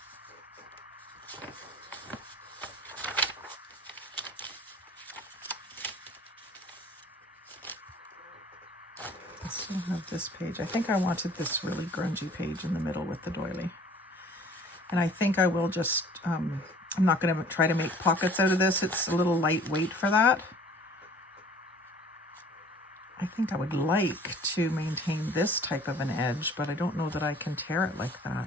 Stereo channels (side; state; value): both; normal; correlation 0.51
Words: I still have this page. I think I wanted this really grungy page in the middle with the doily. And I think I will just, I'm not going to try to make pockets out of this. It's a little lightweight for that. I think I would like to maintain this type of an edge, but I don't know that I can tear it like